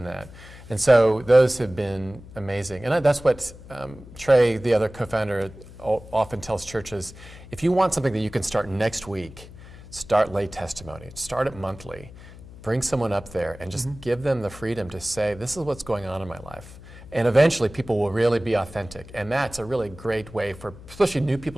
that. And so those have been amazing. And that's what Trey, the other co-founder, often tells churches, if you want something that you can start next week, start lay testimony. Start it monthly. Bring someone up there and just give them the freedom to say, this is what's going on in my life. And eventually people will really be authentic. And that's a really great way for, especially new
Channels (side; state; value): left; noise; hum, 18 dB below the sound